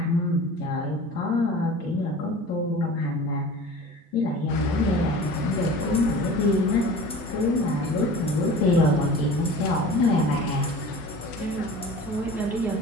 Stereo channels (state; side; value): normal; both; correlation 0.40